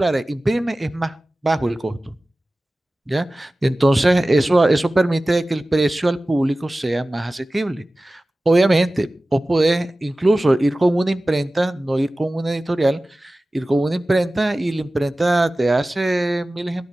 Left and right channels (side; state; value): both; normal; correlation 0.97